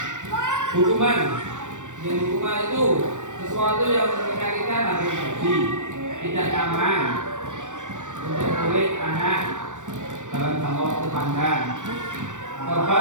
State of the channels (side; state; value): left; late; 0.86 ms